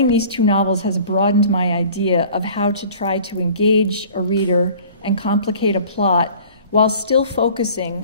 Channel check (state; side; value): inverted; both; correlation -0.47